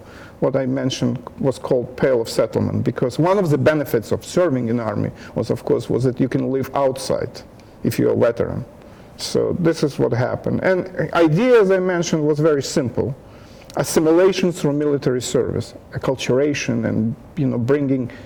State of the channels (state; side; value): identical; both; correlation 1.00